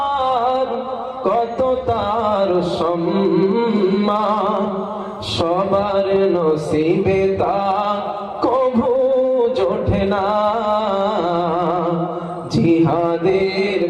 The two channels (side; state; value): both; identical; correlation 1.00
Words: কত তার সম্মান, সবার নসিবে তা কভু জোটে না। জিহাদের